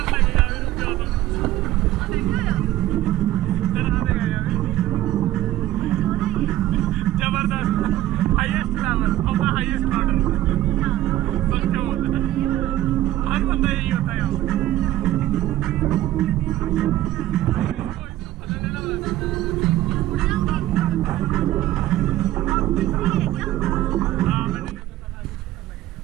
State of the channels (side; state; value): left; quieter; 14.4 dB